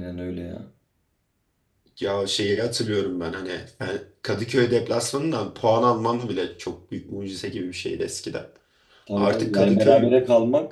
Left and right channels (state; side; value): identical; both; correlation 1.00